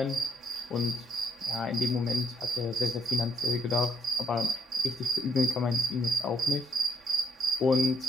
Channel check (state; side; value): normal; both; correlation 0.71